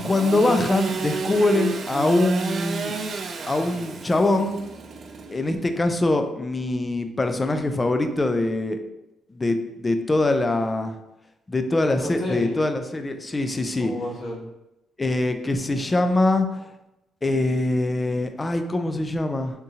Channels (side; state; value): both; normal; correlation 0.88